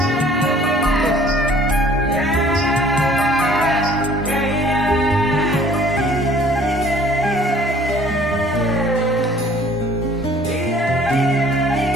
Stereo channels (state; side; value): normal; both; correlation 0.54